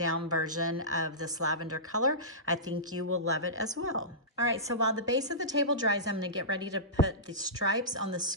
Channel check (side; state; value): both; normal; correlation -0.19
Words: version of this lavender color. I think you will love it as well. All right, so while the base of the table dries, I'm gonna get ready to put the stripes on the